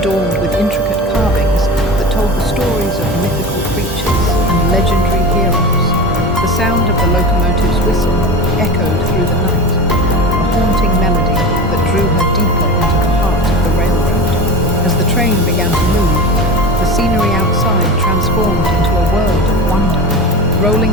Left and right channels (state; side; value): normal; both; correlation 0.29